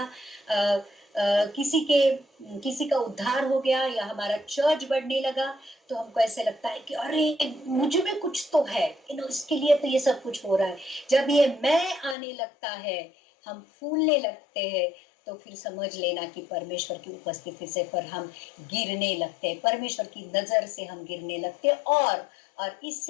किसी का उद्धार हो गया, या हमारा चर्च बढ़ने लगा, तो हमको ऐसे लगता है कि अरे मुझ में कुछ तो है, इसके लिए तो ये सब कुछ हो रहा है। जब ये मैं आने लगता है, हम फूलने लगते हैं, तो फिर समझ लेना कि परमेश्वर की उपस्थिति से पर हम गिरने लगते हैं, परमेश्वर की नजर से हम गिरने लगते हैं, और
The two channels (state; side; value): drops out; right; at 12.2 s